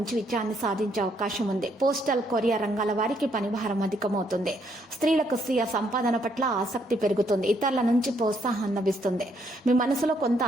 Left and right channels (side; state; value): both; normal; correlation 0.72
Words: విజయాన్ని సాధించే అవకాశం ఉంది. పోస్టల్, కొరియర్ రంగాల వారికి పనిభారం అధికమవుతుంది. స్త్రీలకు స్వీయ సంపాదన పట్ల ఆసక్తి పెరుగుతుంది. ఇతరుల నుంచి ప్రోత్సాహం లభిస్తుంది. మీ మనసులో కొంత